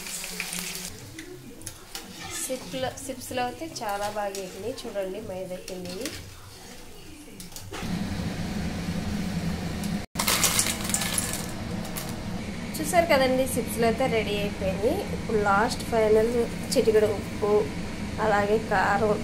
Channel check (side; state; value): both; identical; correlation 1.00